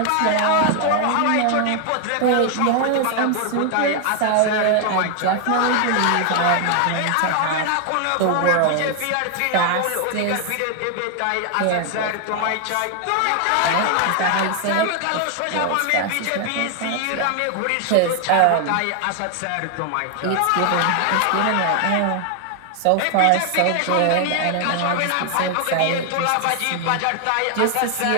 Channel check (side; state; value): both; different; correlation 0.00